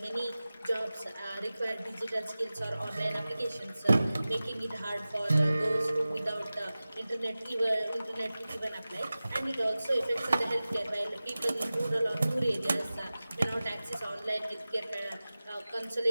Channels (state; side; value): inverted; both; correlation -0.96